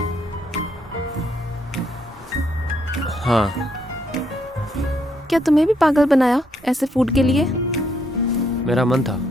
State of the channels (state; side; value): normal; both; correlation 0.74